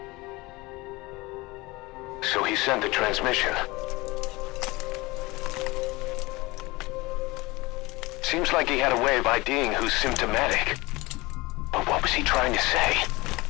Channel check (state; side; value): quieter; right; 22.3 dB